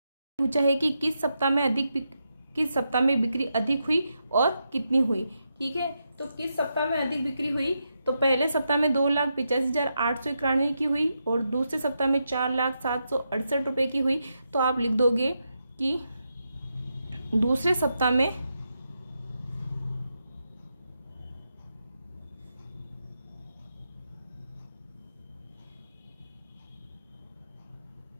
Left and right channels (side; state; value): both; inverted; correlation -0.85